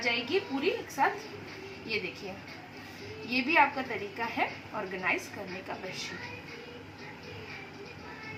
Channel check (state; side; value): identical; both; correlation 1.00